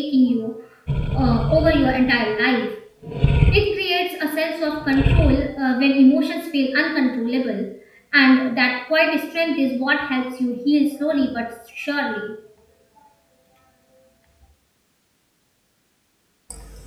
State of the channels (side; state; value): both; identical; correlation 1.00